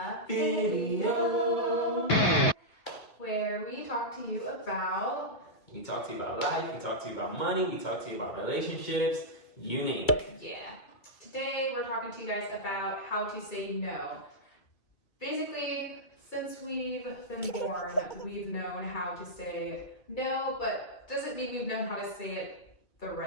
video, where we talk to you about life, we talk to you about money, we talk to you about relationships, you name it. Yeah. Today we're talking to you guys about how to say no. Basically, since we've been born, we've known how to say no, but doesn't mean we've known how to say it the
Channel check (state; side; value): late; right; 2.6 ms